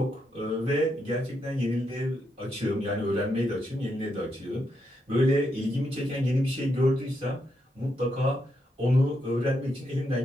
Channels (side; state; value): both; normal; correlation 0.81